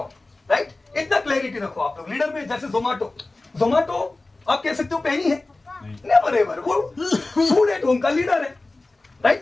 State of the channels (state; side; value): quieter; right; 3.1 dB